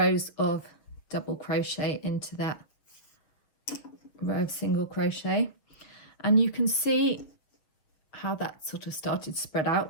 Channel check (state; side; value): late; right; 7.0 ms